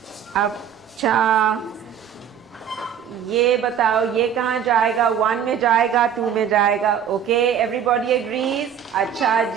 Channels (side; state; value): left; quieter; 8.7 dB